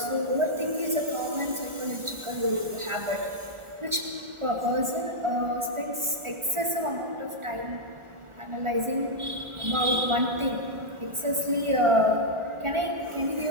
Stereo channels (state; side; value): late; left; 1.4 ms